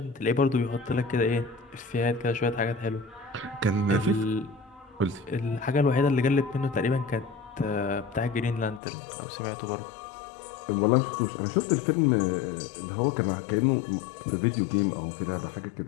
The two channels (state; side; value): drops out; right; at 8.8 s